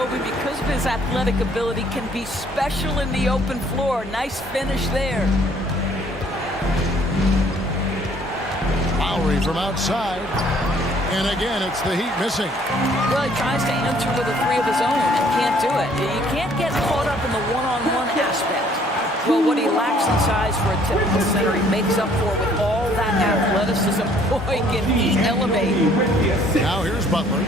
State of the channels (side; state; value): both; normal; correlation 0.60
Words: because of his athletic ability, can be special in the open floor. Nice finish there. Lowry from outside. And again, it's the Heat missing. Well, he tries to enter with a 3 of his own and can't do it. You can't get caught up in the one-on-one aspect. Well, what he lacks in size for a typical center, he makes up for with all that athleticism. Boy, can he elevate. Now here's Butler.